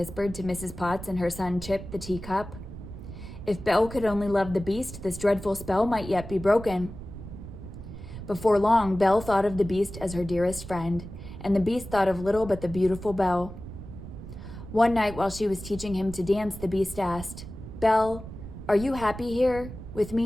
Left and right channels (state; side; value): noise; right; rumble, 12 dB below the sound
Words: to Mrs. Potts and her son Chip, the teacup. If Belle could only love the beast, this dreadful spell might yet be broken. Before long, Belle thought of the beast as her dearest friend, and the beast thought of little but the beautiful Belle. One night while she was teaching him to dance, the beast asked, "Belle, are you happy here, with